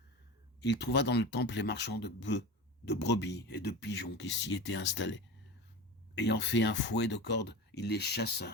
Il trouva dans le temple les marchands de bœufs, de brebis et de pigeons qui s'y étaient installés. Ayant fait un fouet de cordes, il les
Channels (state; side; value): normal; both; correlation 0.28